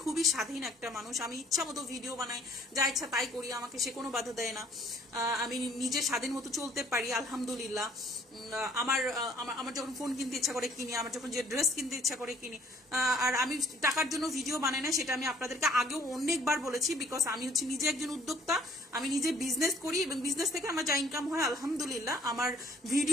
খুবই স্বাধীন একটা মানুষ। আমি ইচ্ছা মতো ভিডিও বানাই, যা ইচ্ছা তাই করি, আমাকে সে কোনো বাধা দেয় না। আমি নিজে স্বাধীন মতো চলতে পারি, আলহামদুলিল্লাহ। আমার যখন ফোন কিনতে ইচ্ছা করে কিনি, আমার যখন যে ড্রেস কিনতে ইচ্ছা করে কিনি। আর আমি টাকার জন্য ভিডিও বানাই না, সেটা আমি আপনাদেরকে আগেও অনেকবার বলেছি, বিকজ আমি হচ্ছে নিজে একজন উদ্যোক্তা, আমি নিজে বিজনেস করি, এবং বিজনেস থেকে আমার যা ইনকাম হয় আলহামদুলিল্লাহ। আমার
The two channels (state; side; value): normal; both; correlation 0.58